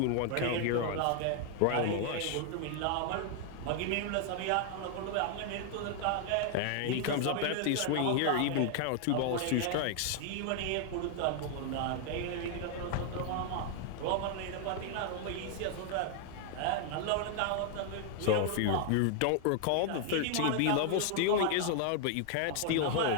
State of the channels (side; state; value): both; different; correlation 0.00